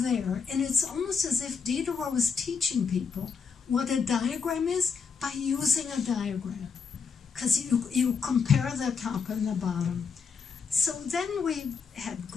And it's almost as if Diderot was teaching people what a diagram is by using a diagram, because you compare the top and the bottom. So then we had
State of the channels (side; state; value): right; quieter; 5.7 dB